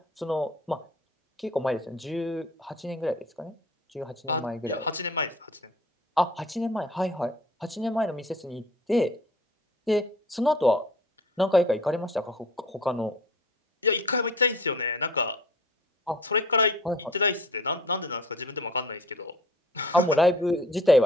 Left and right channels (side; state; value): both; normal; correlation 0.47